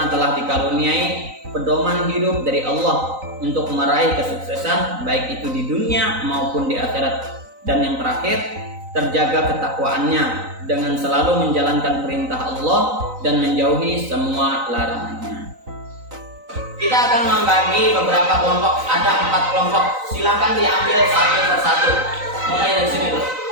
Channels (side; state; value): left; late; 3.9 ms